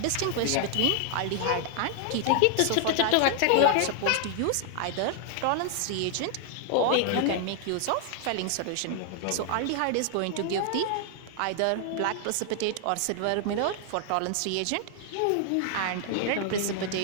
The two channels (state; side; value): different; both; correlation 0.00